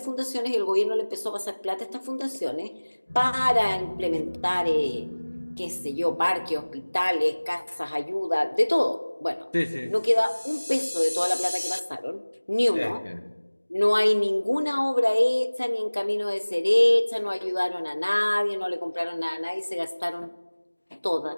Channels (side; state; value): both; inverted; correlation -1.00